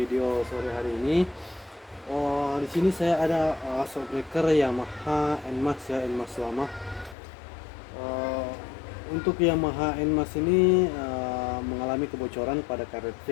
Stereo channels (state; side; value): drops out; right; at 7.2 s